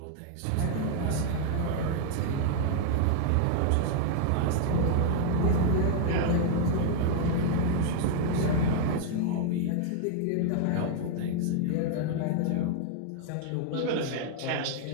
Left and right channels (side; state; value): both; different; correlation 0.00